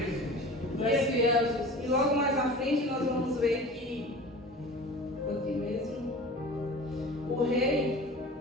Aleluia, Jesus. E logo mais à frente nós vamos ver que aqui mesmo o rei,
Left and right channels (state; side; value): normal; both; correlation 0.38